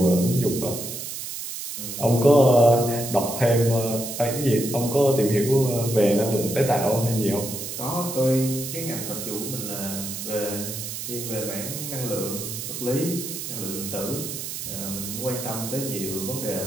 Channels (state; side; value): noise; right; hiss, 7 dB below the sound